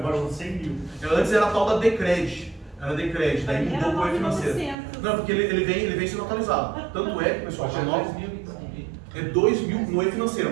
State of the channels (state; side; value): drops out; left; at 4.8 s